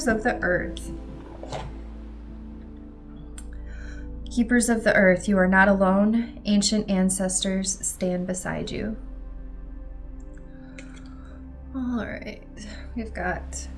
of the Earth. Keepers of the Earth, you are not alone. Ancient ancestors stand beside you. All right, we've got,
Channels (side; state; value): both; identical; correlation 1.00